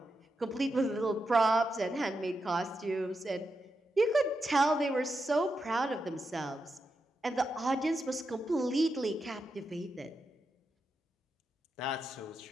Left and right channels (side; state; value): both; normal; correlation 0.86